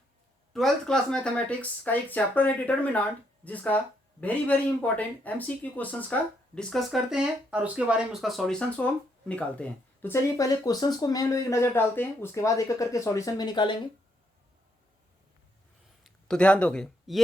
12th क्लास मैथमेटिक्स का एक चैप्टर है डिटर्मिनेंट, जिसका very very important MCQ questions का डिस्कस करते हैं और उसके बारे में उसका सॉल्यूशंस को हम निकालते हैं। तो चलिए पहले क्वेश्चंस को मैं लोग एक नज़र डालते हैं, उसके बाद एक एक करके सॉल्यूशन भी निकालेंगे। तो ध्यान दोगे,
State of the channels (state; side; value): normal; both; correlation 0.75